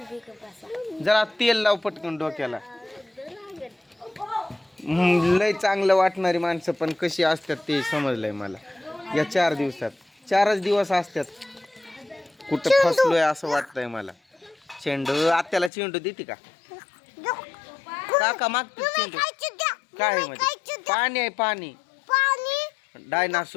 जरा तेल लाव पटकन डोक्याला. लय चांगलं वाटणारी माणसं पण कशी असतात ते समजलंय मला या 4 दिवसात. 4च दिवस असतात. कुठं फसलोय असं वाटतंय मला. चेंडू आत्याला चेंडू देते का काका मागते चेंडू. काय आहे म्हणजे पाणी आहे पाणी.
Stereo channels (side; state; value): right; drops out; at 15.7 s